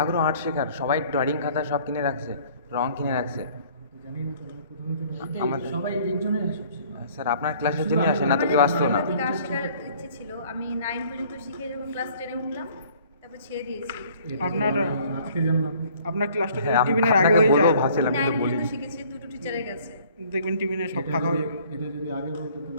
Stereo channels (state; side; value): inverted; both; correlation -0.55